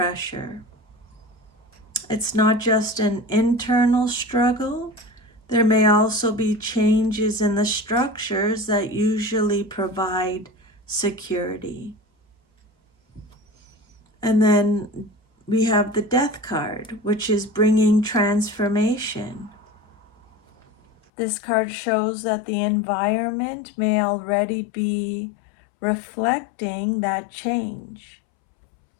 It's not just an internal struggle. There may also be changes in the structures that usually provide security. And then we have the Death card, which is bringing transformation. This card shows that the environment may already be reflecting that change.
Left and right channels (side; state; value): right; drops out; at 21.0 s